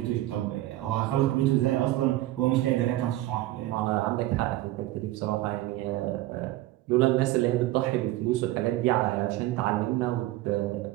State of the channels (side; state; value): left; quieter; 16.3 dB